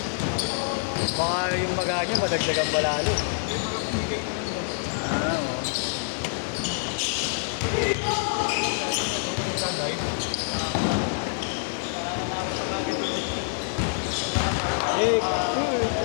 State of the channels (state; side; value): silent; right; digital silence